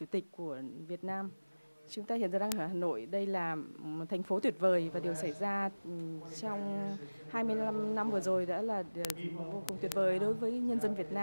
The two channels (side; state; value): both; inverted; correlation -0.99